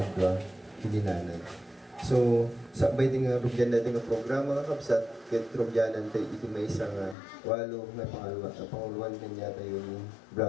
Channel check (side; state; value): right; drops out; at 7.2 s